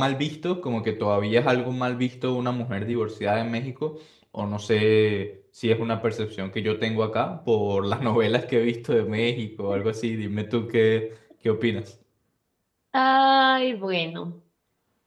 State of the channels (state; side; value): identical; both; correlation 1.00